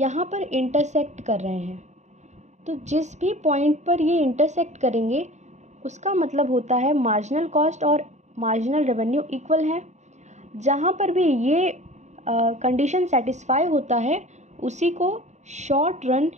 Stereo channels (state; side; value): late; left; 0.34 ms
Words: पर इंटरसेक्ट कर रहे हैं। तो जिस भी पॉइंट पर ये इंटरसेक्ट करेंगे उसका मतलब होता है मार्जिनल कॉस्ट और मार्जिनल रेवेन्यू इक्वल हैं। जहाँ पर भी ये कंडीशन सेटिस्फाई होता है उसी को शॉर्ट रन